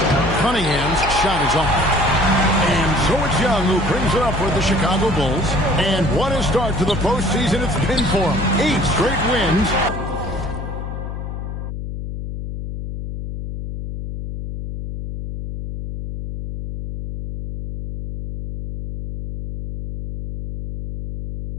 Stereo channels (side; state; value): left; noise; hum, 7 dB below the sound